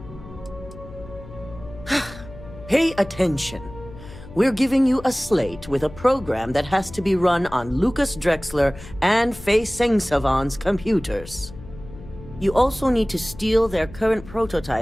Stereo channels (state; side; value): noise; left; hum, 16 dB below the sound